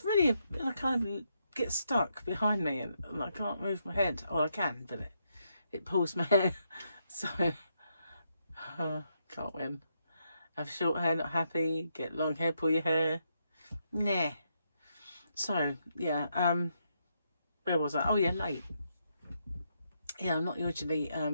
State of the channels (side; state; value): both; inverted; correlation -0.79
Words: really, I kind of get stuck behind me, and I can't move my head. Or I can, but it pulls my hair, so can't win. Have short hair, not happy. Get long hair, pull your hair. Nah. So, yeah, where was I? Oh, yeah, late. Yeah, I'm not usually